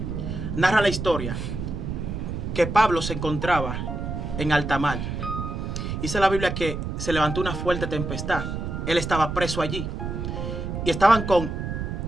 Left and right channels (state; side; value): noise; right; rumble, 4 dB below the sound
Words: narra la historia que Pablo se encontraba en alta mar. Dice la Biblia que se levantó una fuerte tempestad. Él estaba preso allí. Y estaban con